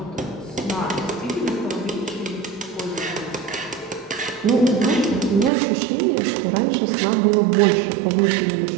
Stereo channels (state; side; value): drops out; left; at 5.5 s